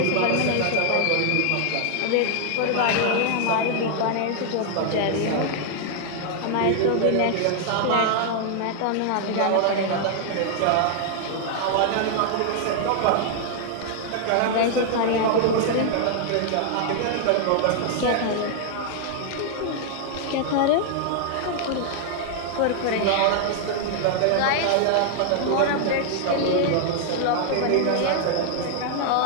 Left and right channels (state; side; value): different; both; correlation 0.00